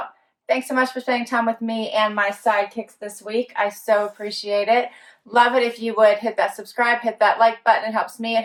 Thanks so much for spending time with me and my sidekicks this week. I so appreciate it. Love it if you would hit that subscribe, hit that like button. It helps me, it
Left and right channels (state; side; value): identical; both; correlation 1.00